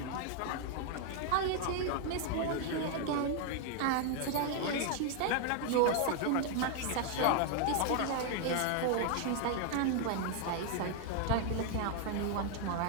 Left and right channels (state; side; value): different; both; correlation 0.00